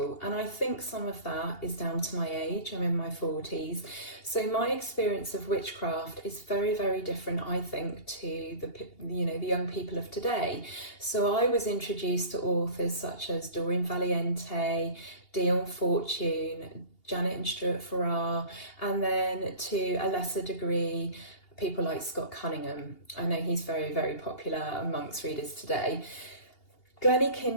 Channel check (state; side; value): late; right; 2.8 ms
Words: and I think some of that is down to my age. I'm in my 40s, so my experience of witchcraft is very, very different, I think, to the young people of today. So I was introduced to authors such as Doreen Valiente, Dion Fortune, Janet and Stuart Farrar, and then to a lesser degree people like Scott Cunningham. I know he's very, very popular amongst readers today. Glennie